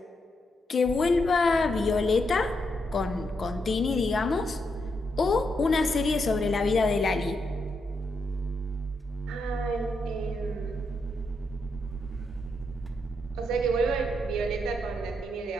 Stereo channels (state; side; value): normal; both; correlation 0.81